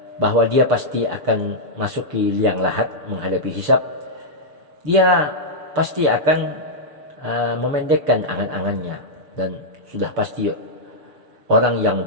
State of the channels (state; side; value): late; left; 6.7 ms